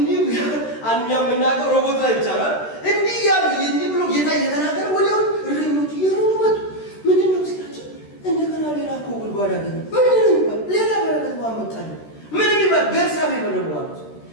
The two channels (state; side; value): late; right; 13 ms